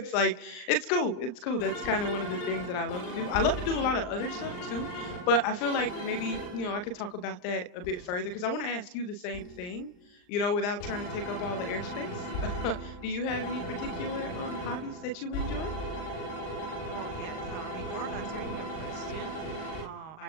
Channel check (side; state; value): right; late; 39 ms